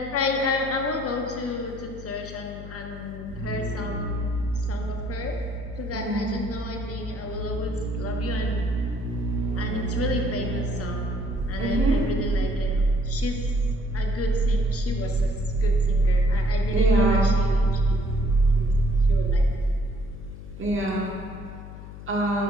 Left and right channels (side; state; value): left; noise; hum, 13 dB below the sound